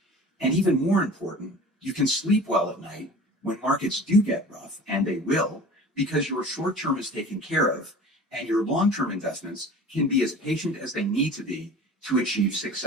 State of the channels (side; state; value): both; normal; correlation 0.41